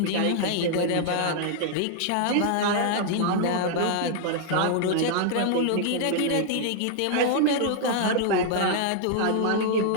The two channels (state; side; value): different; both; correlation 0.00